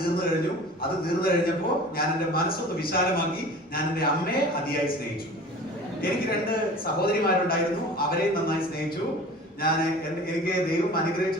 കഴിഞ്ഞു. അത് തീർന്നു കഴിഞ്ഞപ്പോ ഞാൻ എന്റെ മനസ്സൊന്ന് വിശാലമാക്കി. ഞാൻ എന്റെ അമ്മയെ അതിയായി സ്നേഹിച്ചു. എനിക്ക് 2 സഹോദരിമാരുണ്ടായിരുന്നു, അവരെയും നന്നായി സ്നേഹിച്ചു. എനിക്ക് ദൈവം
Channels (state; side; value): normal; both; correlation 0.41